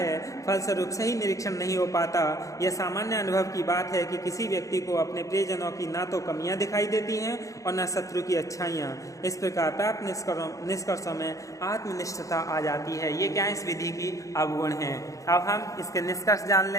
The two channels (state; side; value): late; right; 0.16 ms